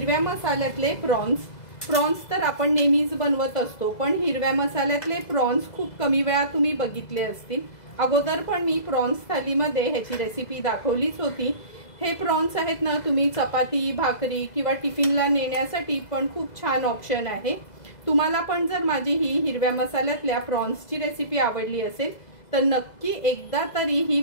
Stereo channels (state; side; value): late; right; 2.0 ms